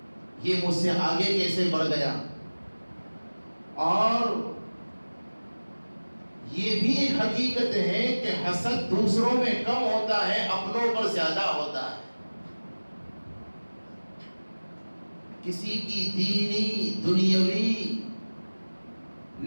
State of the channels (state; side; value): inverted; both; correlation -1.00